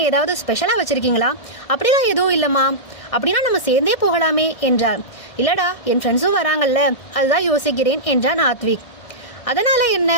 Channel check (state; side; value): late; right; 1.6 ms